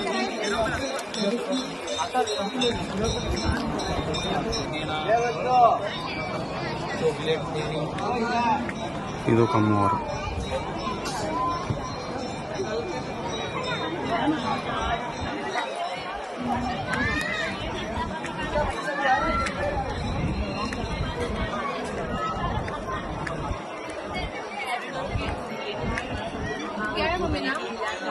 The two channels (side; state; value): both; identical; correlation 1.00